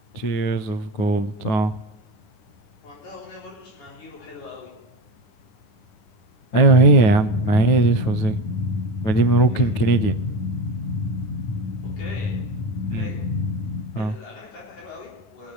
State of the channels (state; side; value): late; right; 9.4 ms